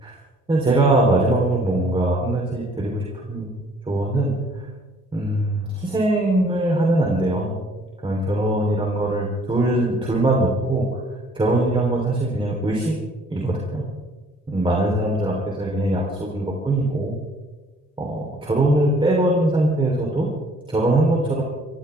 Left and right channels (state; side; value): normal; both; correlation 0.58